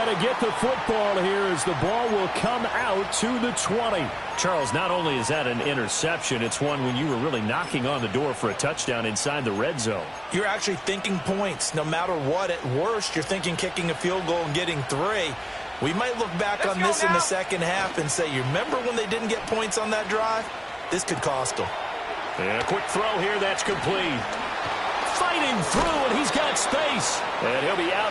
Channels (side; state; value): both; identical; correlation 1.00